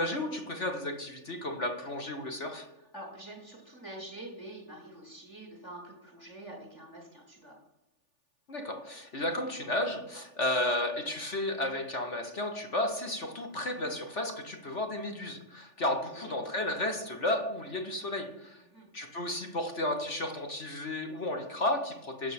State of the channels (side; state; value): right; late; 3.4 ms